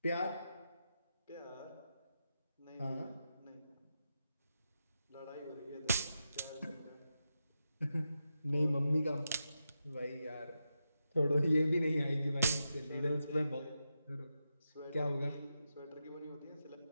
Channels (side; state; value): both; inverted; correlation -0.88